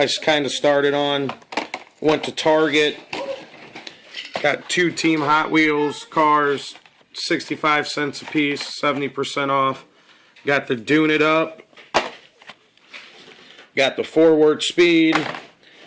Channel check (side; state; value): both; identical; correlation 1.00